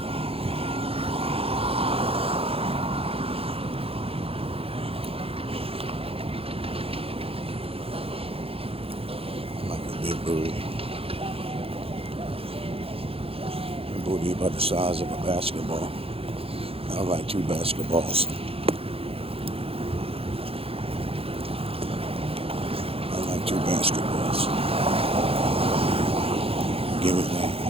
Like a big booty. A booty about the size of a basketball. I like 2 basketballs. I like 2 basketballs. Give me that.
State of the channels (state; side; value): late; left; 0.27 ms